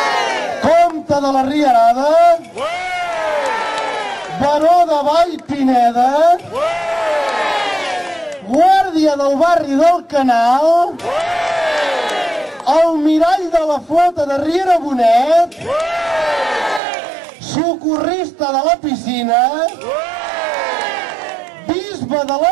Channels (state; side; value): drops out; left; at 16.8 s